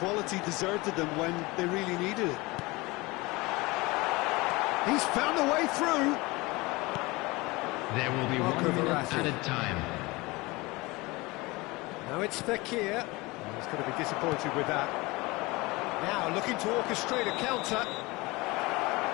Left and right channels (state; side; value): quieter; right; 23.0 dB